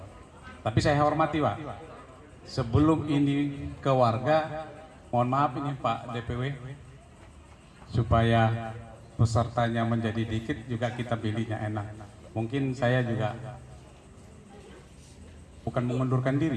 Tapi saya hormati Pak, sebelum ini ke warga, mohon maaf ini Pak DPW, supaya pesertanya menjadi dikit juga kita pilihnya enak. Mungkin saya juga bukan mengundurkan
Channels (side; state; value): both; identical; correlation 1.00